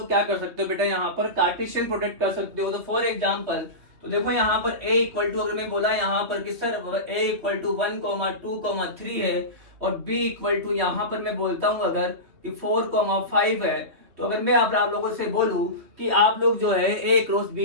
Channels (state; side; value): late; left; 3.2 ms